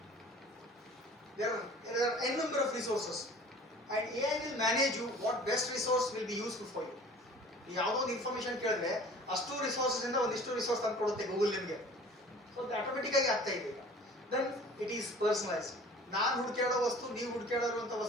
There are n number of resources, and AI will manage you what best resource will be useful for you. ಯಾವುದೋ ಒಂದು information ಕೇಳಿದ್ರೆ ಅಷ್ಟು resources ಇಂದ ಒಂದಿಷ್ಟು resource ತಂದು ಕೊಡುತ್ತೆ Google ನಿಮಗೆ. So ಅದು ಆಟೋಮೆಟಿಕ್ ಆಗಿ ಆಗ್ತಾ ಇದೆ ಈಗ. Then it is personalised. ನಾನು ಹುಡುಕಾಡೋ ವಸ್ತು, ನೀವು ಹುಡುಕಾಡಿರುವಂಥ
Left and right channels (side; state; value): both; normal; correlation 0.46